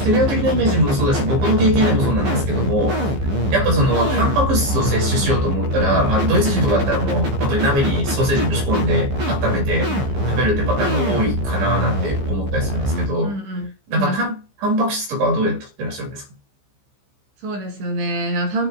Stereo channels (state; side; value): late; left; 15 ms